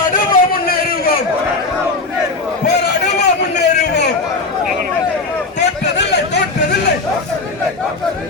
முன்னேறுவோம், போராடுவோம், முன்னேறுவோம். தோற்றதில்லை, தோற்றதில்லை,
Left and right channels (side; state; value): right; quieter; 3.6 dB